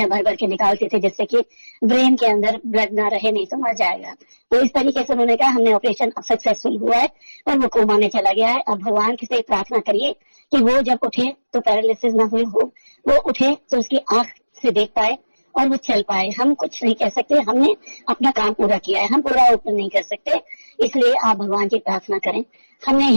भर भर के निकालते थे जिससे कि ब्रेन के अंदर ब्लड ना रहे, नहीं तो मर जाएगा। तो इस तरीके से उन्होंने कहा हमने ऑपरेशन सक्सेसफुल हुआ है और वो कोमा में चला गया है। अब भगवान से प्रार्थना करिए कि वो जब उठे तो पैरालिसिस ना हुई हो, वो उठे तो उसकी आंख से देख पाए और वो चल पाए। हम कुछ नहीं कह सकते, हमने अपना काम पूरा किया है, हम पूरा ओपन नहीं कर सकते, इसलिए आप भगवान की प्रार्थना करें। हमने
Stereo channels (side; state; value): both; inverted; correlation -1.00